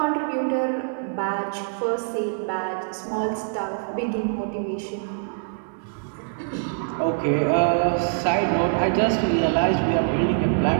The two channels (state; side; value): silent; left; digital silence